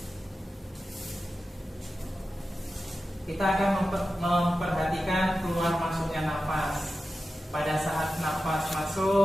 Kita akan memperhatikan keluar masuknya nafas. Pada saat nafas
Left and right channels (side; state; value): both; normal; correlation 0.93